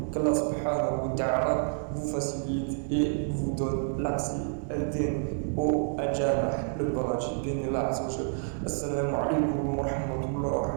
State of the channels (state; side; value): silent; left; digital silence